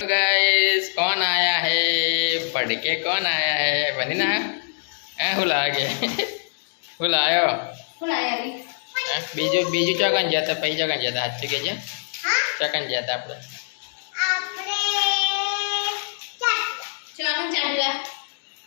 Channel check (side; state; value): right; silent; digital silence